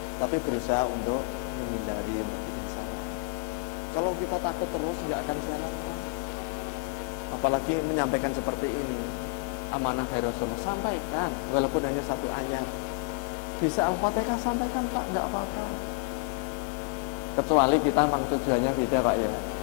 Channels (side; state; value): right; quieter; 33.2 dB